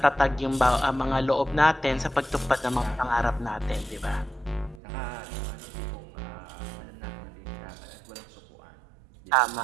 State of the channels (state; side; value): drops out; left; at 4.8 s